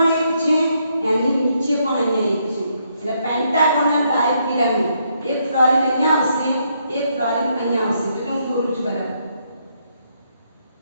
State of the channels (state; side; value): inverted; both; correlation -0.75